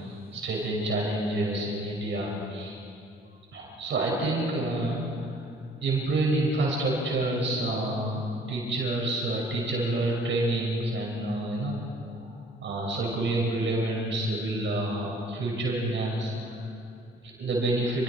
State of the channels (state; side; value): normal; both; correlation 0.56